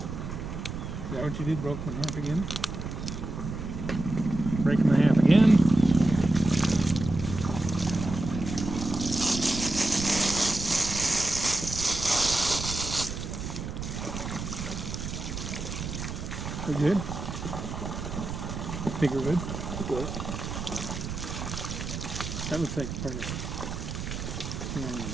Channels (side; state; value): right; noise; rumble, 6 dB below the sound